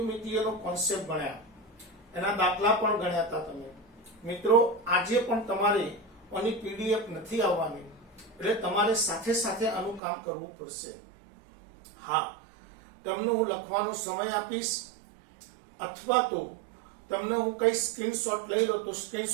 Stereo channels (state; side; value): drops out; left; at 10.0 s